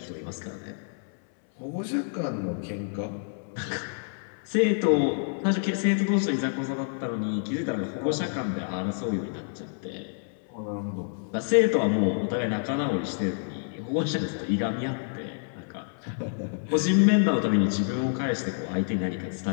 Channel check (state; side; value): silent; right; 59 dB below the other